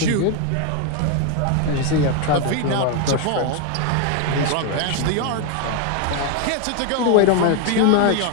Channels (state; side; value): different; both; correlation 0.01